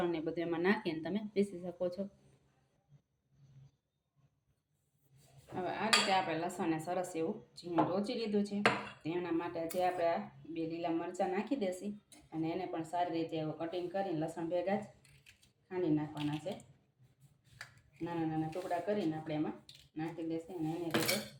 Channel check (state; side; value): identical; both; correlation 1.00